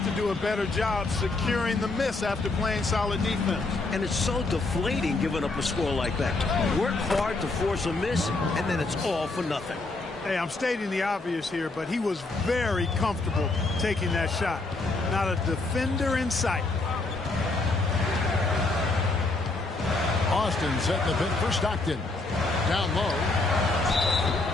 to do a better job securing the miss after playing solid defense. And it's so deflating giving up a score like that. Work hard to force a miss, and then it's all for nothing. Hey, I'm stating the obvious here, but he was very comfortable taking that shot. Not a defender in sight. Austin setting the pin for Stockton. Down low.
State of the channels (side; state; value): right; quieter; 3.3 dB